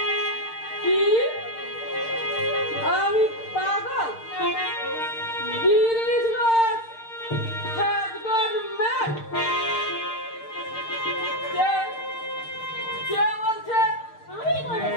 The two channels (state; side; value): late; right; 6.6 ms